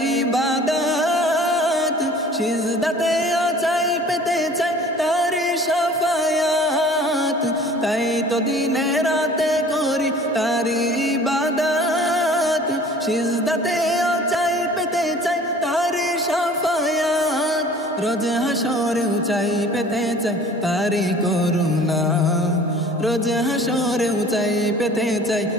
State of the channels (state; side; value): normal; both; correlation 0.48